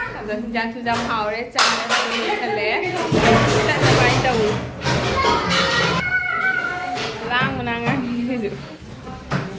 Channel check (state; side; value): identical; both; correlation 1.00